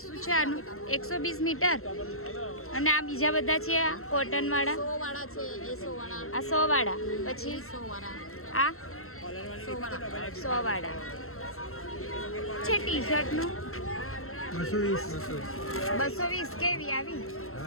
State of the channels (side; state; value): right; late; 0.62 ms